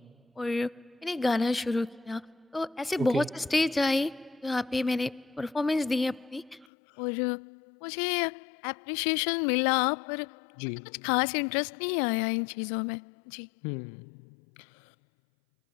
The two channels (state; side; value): drops out; right; at 6.7 s